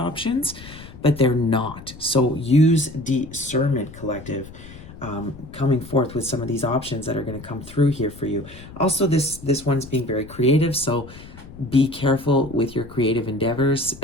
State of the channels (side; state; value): left; noise; rumble, 17 dB below the sound